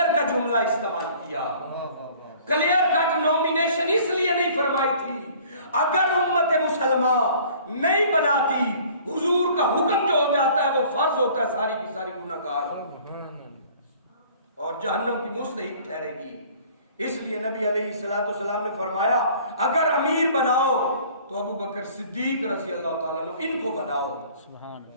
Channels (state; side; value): inverted; both; correlation -0.52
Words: کا جملہ استعمال کیا، کلیئر کٹ نومینیشن اس لیے نہیں فرمائی تھی، اگر امت مسلمہ نہیں بناتی حضور کا حکم جو ہو جاتا ہے وہ فرض ہوتا ہے، ساری کی ساری گناہگار اور جہنم کی مستحق ٹھہرے گی۔ اس لیے نبی علیہ السلام نے فرمایا اگر امیر بناؤ تو ابو بکر صدیق رضی اللہ تعالیٰ عنہ ان کو بناؤ۔